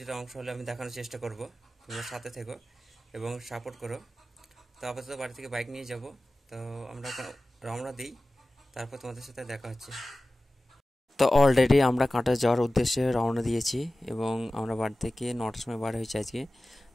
অংশ হলে আমি দেখানোর চেষ্টা করব। তোমরা সাথে থেকো এবং সাপোর্ট করো। তো আপাতত বাড়ি থেকে বাইক নিয়ে যাব। তো আমরা রওনা দিই, তারপর তোমাদের সাথে দেখা হচ্ছে। তো অলরেডি আমরা কাঁটা যাওয়ার উদ্দেশ্যে রওনা দিয়েছি এবং আমরা বাড়ি থেকে 9টার সময় বার হয়েছি আজকে।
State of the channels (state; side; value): normal; both; correlation 0.96